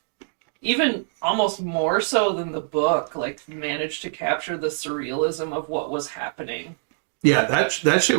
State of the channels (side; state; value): left; silent; digital silence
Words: even almost more so than the book, like managed to capture the surrealism of what was happening. Yeah, that shit